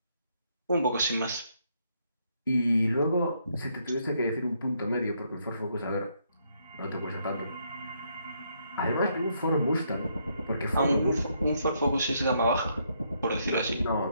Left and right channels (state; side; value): inverted; both; correlation -0.74